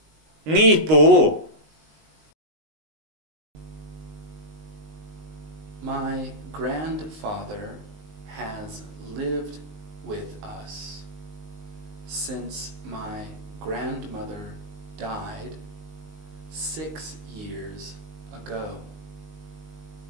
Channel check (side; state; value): left; late; 19 ms